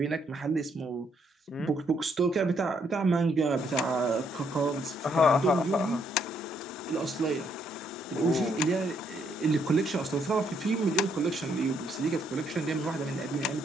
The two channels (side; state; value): both; normal; correlation 0.72